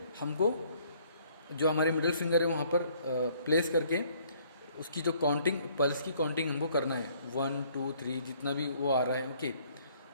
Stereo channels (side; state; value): both; inverted; correlation -0.61